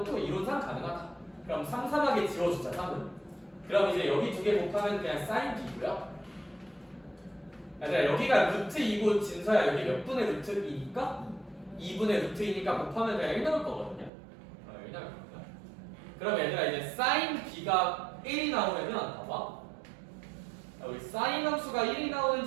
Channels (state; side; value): drops out; left; at 14.1 s